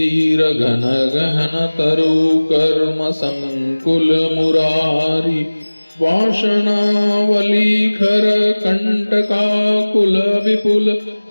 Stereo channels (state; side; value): inverted; both; correlation -1.00